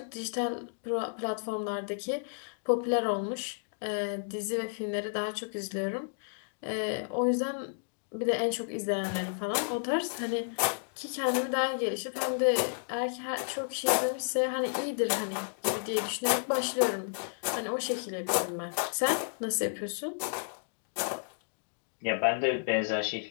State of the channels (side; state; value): right; silent; digital silence